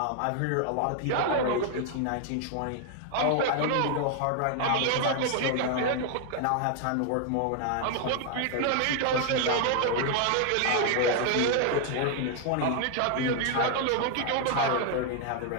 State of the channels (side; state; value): both; different; correlation 0.00